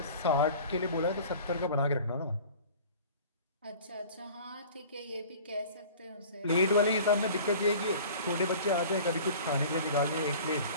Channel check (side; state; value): both; inverted; correlation -0.44